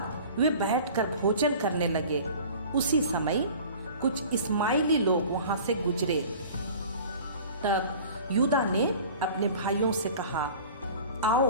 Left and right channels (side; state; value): both; inverted; correlation -0.43